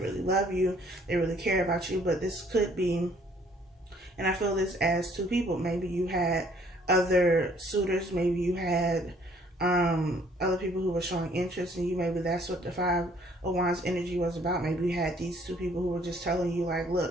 love you, they really care about you. But this could be, and I feel this as two people. Maybe you had other suitors. Maybe you had other people who were showing interest in you. Maybe that's what the Five of Wands energy was about. Maybe you had these two people who were just telling you, like,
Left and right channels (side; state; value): both; normal; correlation 0.61